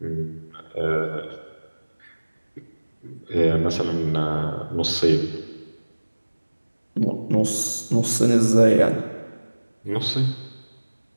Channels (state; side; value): inverted; both; correlation -1.00